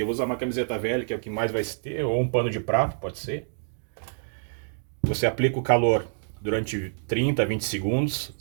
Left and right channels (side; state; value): left; silent; digital silence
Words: eu vou usar uma camiseta velha, que é o que mais vai ter, ou um pano de prato, pode ser. Você aplica o calor durante 30 a 20 segundos,